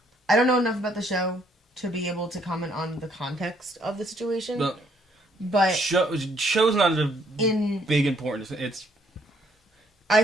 I don't know enough about the show to be able to comment on the context of the situation. But Show's not a in big importance. It's I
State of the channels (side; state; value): both; normal; correlation 0.68